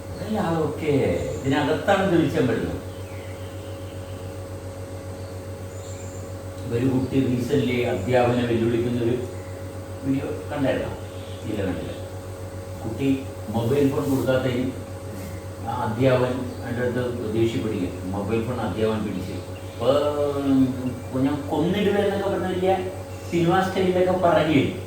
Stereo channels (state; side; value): identical; both; correlation 1.00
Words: അല്ല ഓക്കെ, ഇതിനകത്താണ് തെളിച്ചാൻ പറ്റുന്നത്. ഒരു കുട്ടി റീസെന്റ് അധ്യാപനം വെല്ലുവിളിക്കുന്നൊരു വീഡിയോ കണ്ടായിരുന്നോ? ഇല്ല, കണ്ടില്ല. കുട്ടി മൊബൈൽ ഫോൺ കൊടുക്കാത്തതിന് ആ അധ്യാപകൻ എൻ്റെ അടുത്ത് ദേഷ്യപ്പെടുക. മൊബൈൽ ഫോൺ അധ്യാപകൻ പിടിച്ച് അപ്പോൾ ഞാൻ കൊന്നിടുമെന്നൊക്കെ പറഞ്ഞ വലിയ സിനിമാ സ്റ്റൈലിലൊക്കെ പറയുകയും.